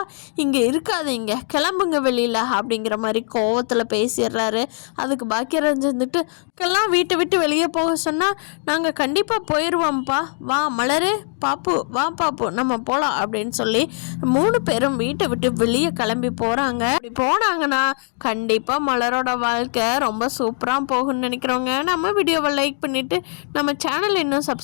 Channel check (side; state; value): right; silent; 65 dB below the other